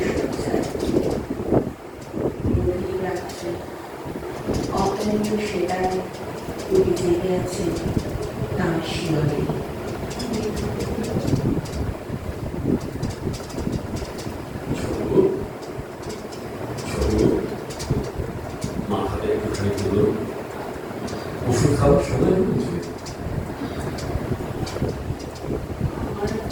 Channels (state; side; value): identical; both; correlation 1.00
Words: সজ্জায় গভীর রাত্রে অক্লান্ত সেটায় কবি জেগে আছে তাঁর শিয়রে। মাথাটা একটুখানি তুলো, ওষুধ খাওয়ার সময় হয়েছে। আমার